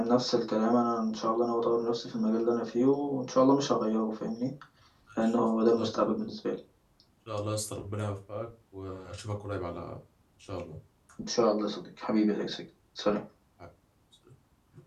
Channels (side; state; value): both; identical; correlation 1.00